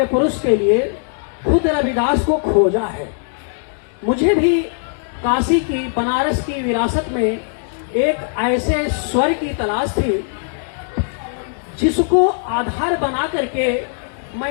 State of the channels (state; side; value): silent; right; digital silence